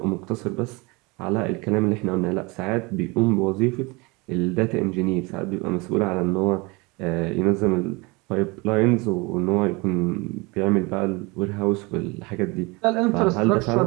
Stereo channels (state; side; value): quieter; left; 26.1 dB